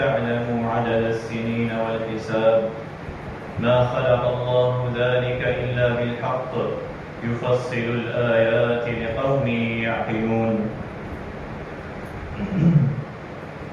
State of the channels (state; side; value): identical; both; correlation 1.00